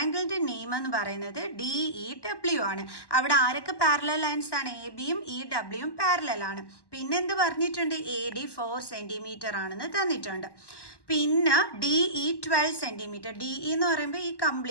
നെയിം എന്ന് പറയുന്നത് DEW ആണ്. അവിടെ ആരൊക്കെ പാരലൽ ലൈൻസ് ആണ്? എ ബിയും ഇ ഡബ്ല്യുവും പാരലൽ ആണ്. പിന്നെ എന്ത് പറഞ്ഞിട്ടുണ്ട്? AD 4 cm ആണെന്ന് തന്നിട്ടുണ്ട്. പിന്നെ DE 12 cm. DE എന്ന് പറയുമ്പോൾ ഈ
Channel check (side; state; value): right; late; 1.1 ms